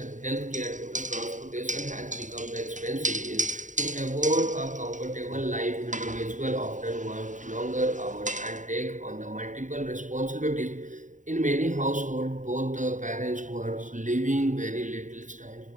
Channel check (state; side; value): late; left; 0.36 ms